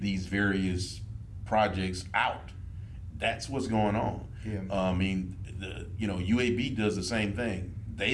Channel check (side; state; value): both; identical; correlation 1.00